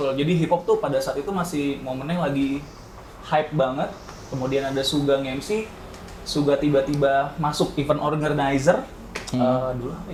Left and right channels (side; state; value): both; identical; correlation 1.00